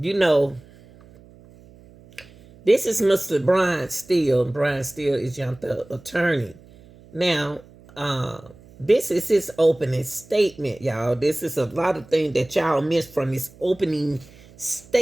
know, this is Mr. Brian Steele. Brian Steele is young the attorney. Now, this is his opening statement, y'all. This is a lot of things that y'all missed from his opening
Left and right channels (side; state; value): right; noise; hum, 24 dB below the sound